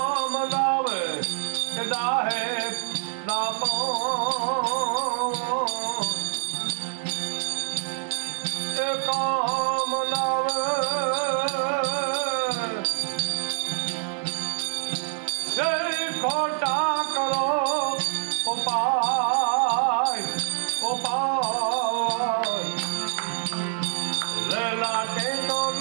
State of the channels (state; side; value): silent; left; digital silence